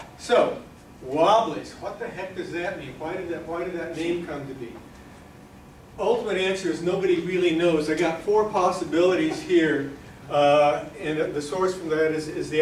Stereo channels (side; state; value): both; identical; correlation 1.00